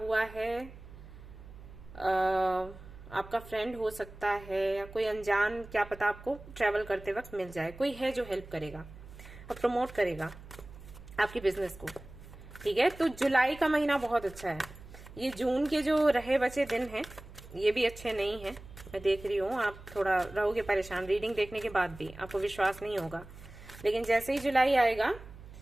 है, आपका फ्रेंड हो सकता है, या कोई अनजान, क्या पता आपको ट्रेवल करते वक्त मिल जाए, कोई है जो हेल्प करेगा और प्रमोट करेगा आपकी बिजनेस को, ठीक है। तो जुलाई का महीना बहुत अच्छा है। ये जून के जो रहे बचे दिन हैं ये भी अच्छे नहीं है, मैं देख रही हूँ। आप थोड़ा रहोगे परेशान, रीडिंग देखने के बाद भी आपको विश्वास नहीं होगा, लेकिन जैसे ही जुलाई आएगा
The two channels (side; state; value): right; noise; hum, 17 dB below the sound